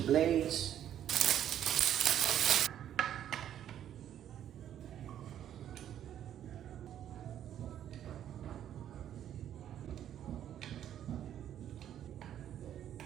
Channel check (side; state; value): left; quieter; 10.6 dB